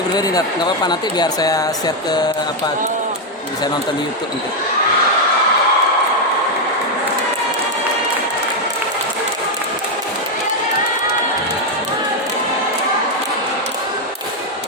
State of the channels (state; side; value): normal; both; correlation 0.03